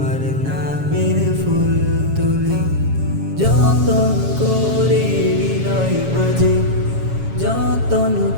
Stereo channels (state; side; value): late; left; 7.3 ms